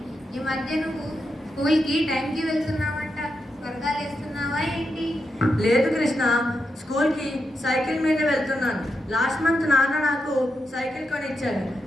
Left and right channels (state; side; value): normal; both; correlation 0.86